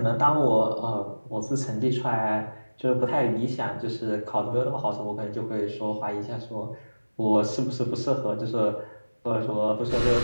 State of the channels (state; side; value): inverted; both; correlation -1.00